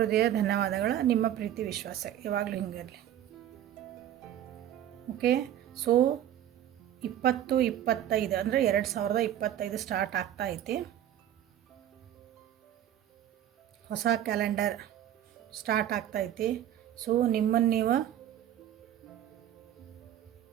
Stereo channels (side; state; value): left; quieter; 11.4 dB